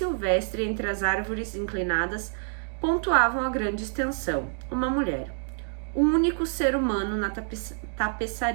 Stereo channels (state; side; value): silent; left; 60 dB below the other